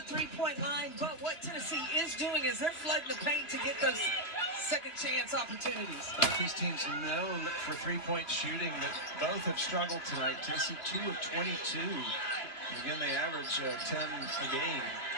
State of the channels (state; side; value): late; right; 2.8 ms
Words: 3-point line, but what Tennessee is doing is they're flooding the paint to get those second chance opportunities. Both these teams known for 3-point shooting, that both have struggled tonight. Tennessee 2 of 22. Again, they average 10 a game.